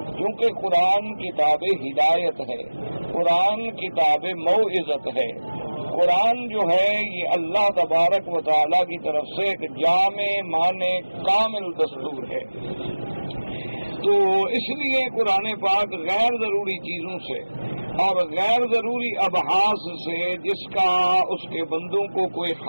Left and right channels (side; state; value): both; inverted; correlation -1.00